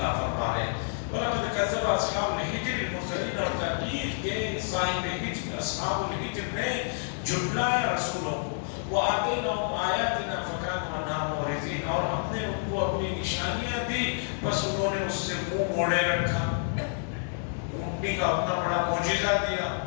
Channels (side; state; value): right; silent; 58 dB below the other